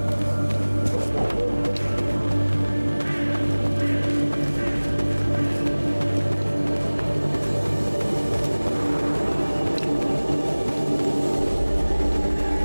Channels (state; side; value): inverted; both; correlation -1.00